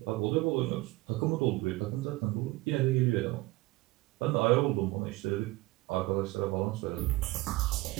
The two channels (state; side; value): quieter; left; 20.4 dB